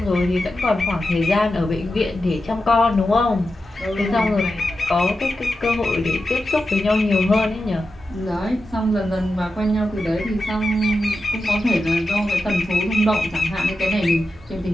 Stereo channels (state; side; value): normal; both; correlation 0.90